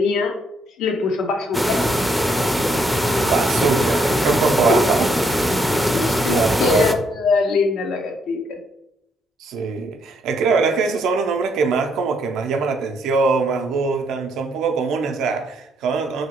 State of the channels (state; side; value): normal; both; correlation 0.72